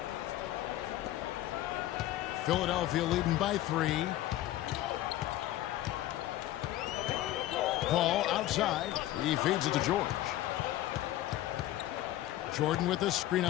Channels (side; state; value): right; quieter; 14.5 dB